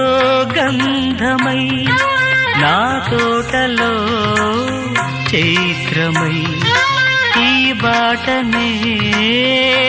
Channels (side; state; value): both; identical; correlation 1.00